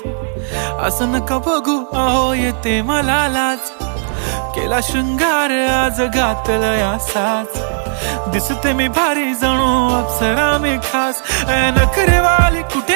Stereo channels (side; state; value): left; silent; digital silence